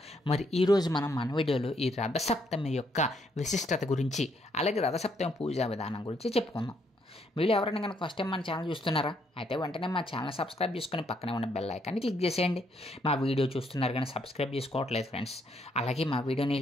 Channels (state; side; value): normal; both; correlation 0.72